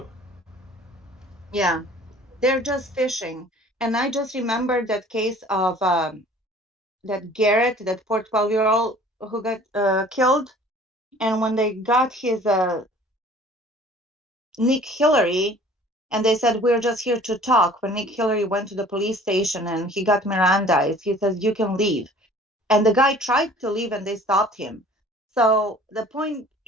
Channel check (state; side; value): normal; both; correlation 0.50